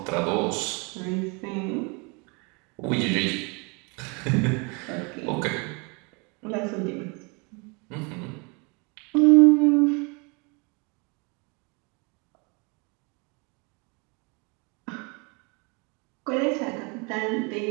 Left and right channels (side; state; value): left; quieter; 30.9 dB